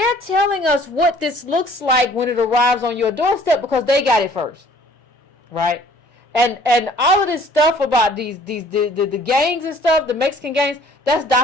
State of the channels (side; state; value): both; normal; correlation 0.55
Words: telling us what this looks like when it arrives on your doorstep because they got it first, right? And all of this stuff about the gangs and stuff, the Mexican gangs, that's